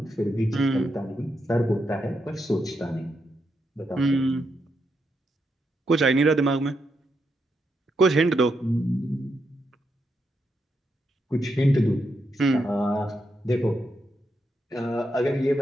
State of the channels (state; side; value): normal; both; correlation 0.82